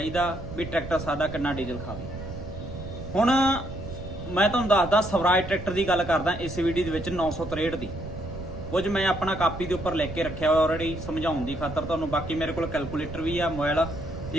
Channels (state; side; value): noise; right; rumble, 10 dB below the sound